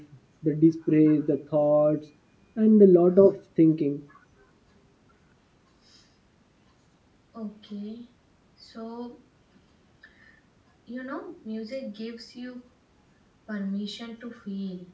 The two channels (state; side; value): identical; both; correlation 1.00